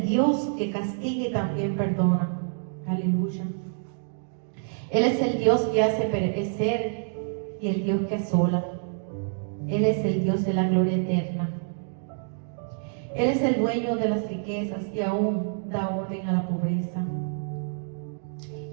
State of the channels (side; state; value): left; silent; digital silence